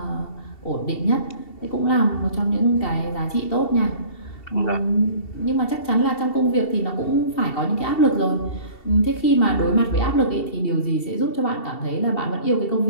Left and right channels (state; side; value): late; right; 2.7 ms